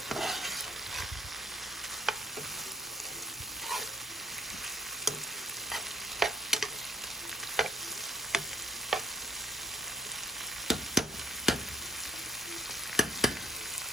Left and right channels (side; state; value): both; normal; correlation 0.64